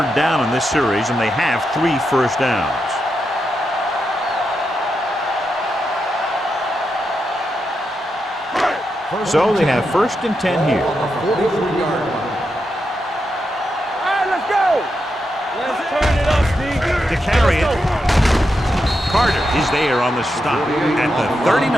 down in this series, and they have 3 first downs. So they have first and 10 here. On the 43-yard line. All right, let's go. Let's turn it up, D. To carry it, Carter is there on the stop at the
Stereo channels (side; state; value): both; normal; correlation 0.85